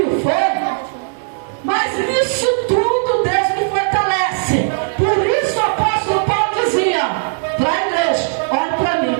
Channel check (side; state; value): left; silent; 68 dB below the other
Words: fome, mas nisso tudo Deus me fortalece. Por isso o apóstolo Paulo dizia para a igreja: olhe para